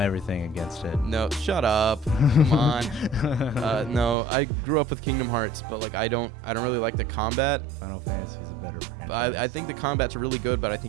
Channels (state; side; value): drops out; left; at 4.2 s